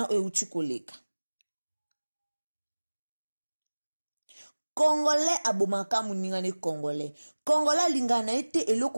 euti koleka. Congolais abomaka muningane Congolais. Congolais lingana ete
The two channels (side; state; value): both; inverted; correlation -1.00